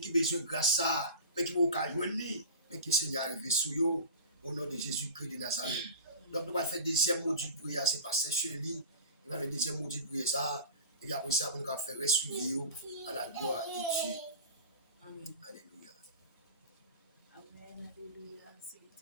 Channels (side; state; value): both; inverted; correlation -0.34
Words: besoin de grâce ça, mais qui va pas joindre lui, mais qui Seigneur arrivé sous yo au nom de Jésus-Christ de Nazareth. Donc nous allons faire deuxième module de prière, c'est pas Chélie. Il va faire deuxième module de prière ça. Et après ça, nous allons faire suivre à la gloire de Dieu. Amen. Alléluia. Amen, alléluia. C'est